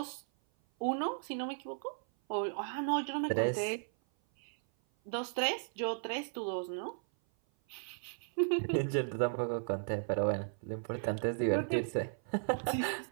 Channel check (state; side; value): silent; left; 54 dB below the other